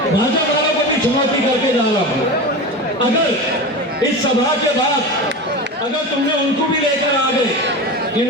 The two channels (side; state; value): both; normal; correlation 0.26